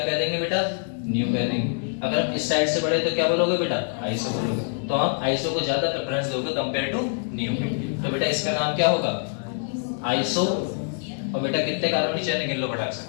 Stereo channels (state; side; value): silent; right; 61 dB below the other